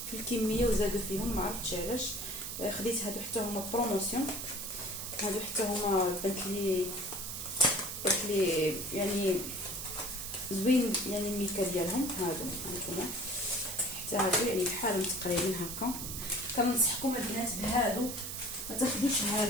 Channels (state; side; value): noise; right; hiss, 6 dB below the sound